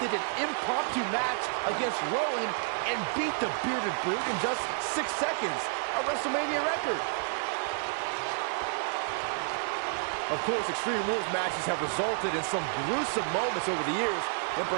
an impromptu match against Rowan and beat the Bearded Brute in just 6 seconds, a WrestleMania record. Of course, Extreme Rules matches have resulted in some gruesome moments over the years, and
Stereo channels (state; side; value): silent; left; 58 dB below the other